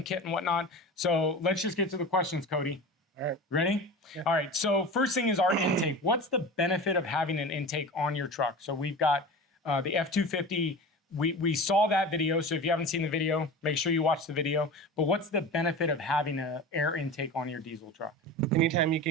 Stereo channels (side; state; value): both; normal; correlation 0.32